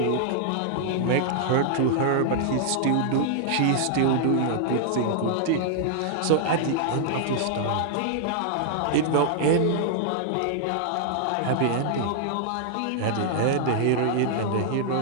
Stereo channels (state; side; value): different; both; correlation -0.01